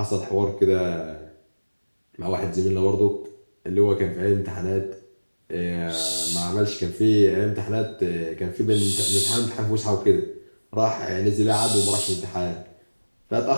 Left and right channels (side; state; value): both; inverted; correlation -1.00